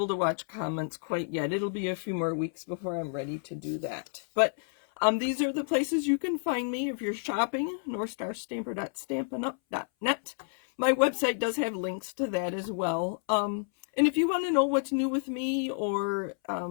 to watch comments quite yet. It'll be a few more weeks before I'm ready to do that. But these are the places you can find me if you're shopping. northstarstamper.stampinup.net. My website does have links to that as well. And if you want to know what's new with me or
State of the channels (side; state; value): right; silent; 58 dB below the other